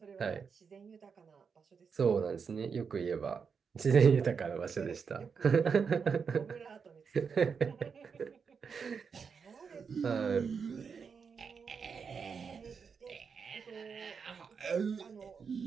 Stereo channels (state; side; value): quieter; left; 6.0 dB